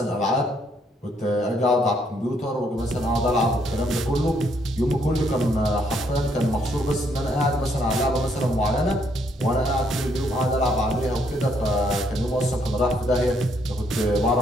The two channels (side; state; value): both; normal; correlation 0.71